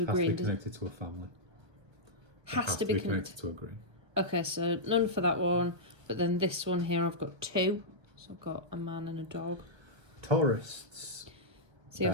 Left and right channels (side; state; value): left; late; 1.4 ms